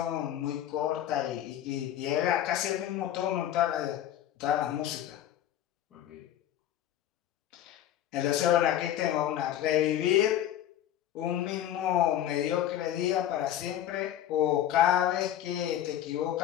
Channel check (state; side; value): quieter; right; 11.7 dB